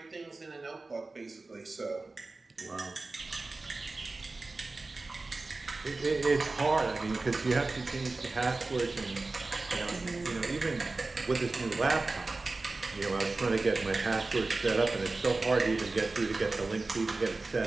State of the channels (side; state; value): left; quieter; 3.4 dB